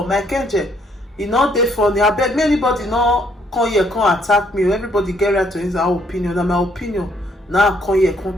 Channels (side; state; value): both; normal; correlation 0.68